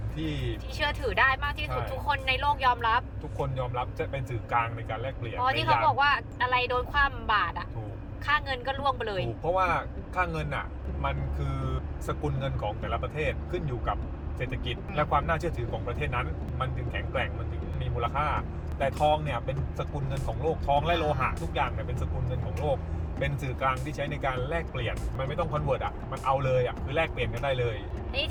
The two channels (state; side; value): identical; both; correlation 1.00